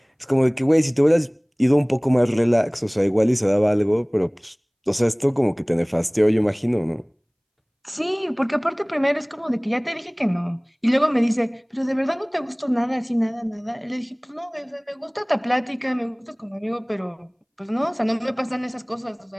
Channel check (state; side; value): identical; both; correlation 1.00